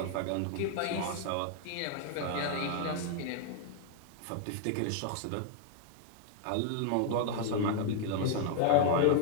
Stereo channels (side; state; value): both; different; correlation 0.00